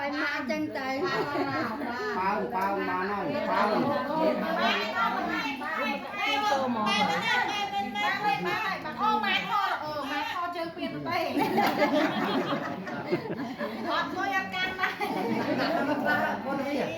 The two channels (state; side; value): identical; both; correlation 1.00